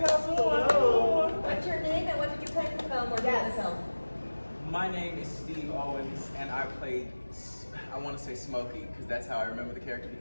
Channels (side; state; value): both; inverted; correlation -1.00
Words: What's your name and what did you play in the film or do in the film? My name is Steve Owens, and I played, I want to say Smokey, because that's how I remember the character,